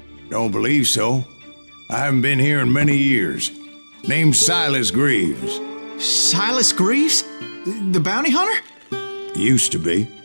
Don't believe so. I haven't been here in many years. Name's Silas Greaves. Silas Greaves? The bounty hunter? Used to be.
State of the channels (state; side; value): inverted; both; correlation -1.00